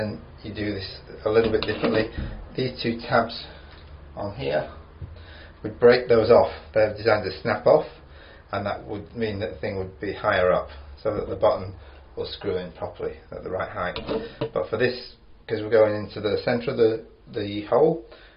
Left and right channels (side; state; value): both; identical; correlation 1.00